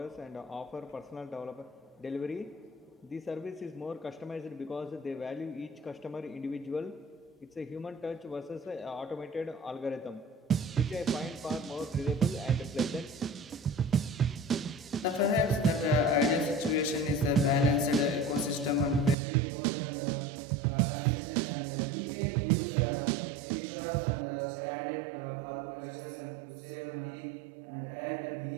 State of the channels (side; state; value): left; drops out; at 19.2 s